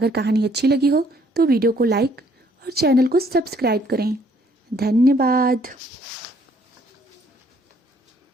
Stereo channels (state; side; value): normal; both; correlation 0.64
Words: कहानी अच्छी लगी हो तो वीडियो को लाइक और चैनल को सब्सक्राइब करें। धन्यवाद।